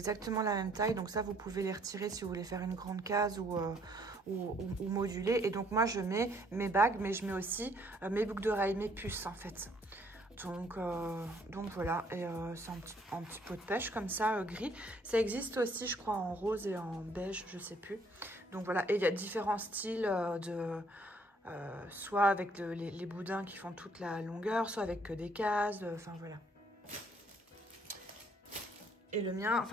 la même taille. Donc ça, vous pouvez les retirer si vous voulez faire une grande case ou moduler. Et donc moi, je mets mes bagues, mais je mets aussi mes boucles d'oreilles, mes puces en fait. Donc voilà. Et c'est un petit pot de pêche comme ça, gris. Ça existe aussi, je crois, en rose et en beige, je sais plus. Donc voilà. Et il y a différents styles soit avec les boudins qui font toute la longueur, soit avec que des cases, enfin voilà. Et le mien,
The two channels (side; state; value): both; normal; correlation 0.64